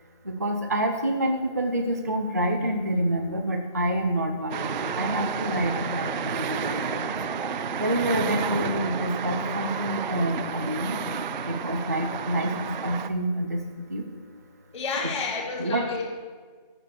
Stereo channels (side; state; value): both; inverted; correlation -0.48